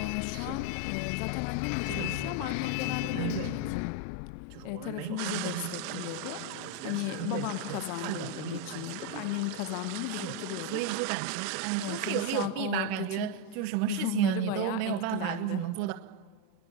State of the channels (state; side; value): different; both; correlation 0.02